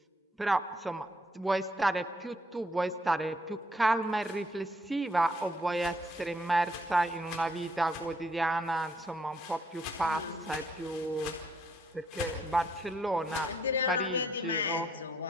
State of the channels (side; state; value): both; normal; correlation 0.70